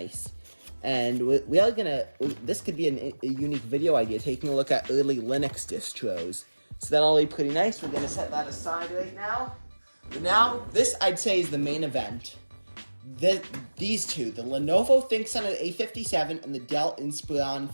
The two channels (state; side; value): inverted; both; correlation -1.00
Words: And we are gonna, this could be a unique video idea, taking a look at early Linux distros. So that'll be pretty nice. We're gonna set that aside right now. But now, this I'd say is the main event. These two, the Lenovo ThinkCentre A57 and the Dell Inspiron